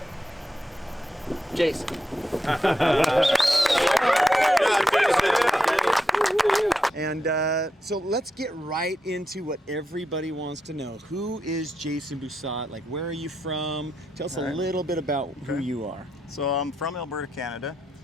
Jason. And so let's get right into what everybody wants to know. Who is Jason Busat? Like, where are you from? Tell us a little bit about who you are. So I'm from Alberta, Canada,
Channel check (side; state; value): both; normal; correlation 0.84